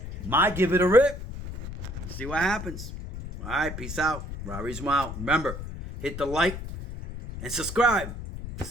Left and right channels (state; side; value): noise; left; rumble, 9 dB below the sound